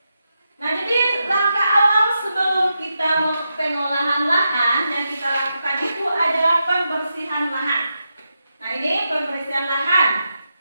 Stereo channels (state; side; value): inverted; both; correlation -0.86